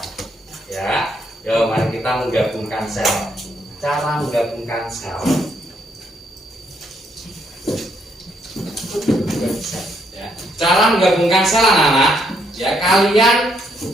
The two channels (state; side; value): normal; both; correlation 0.73